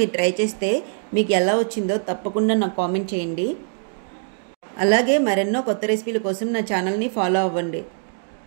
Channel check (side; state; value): left; silent; digital silence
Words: ట్రై చేస్తే మీకు ఎలా వచ్చిందో తప్పకుండా నాకు కామెంట్ చేయండి. అలాగే మరెన్నో కొత్త రెసిపీల కోసం నా ఛానల్ని ఫాలో అవ్వండి.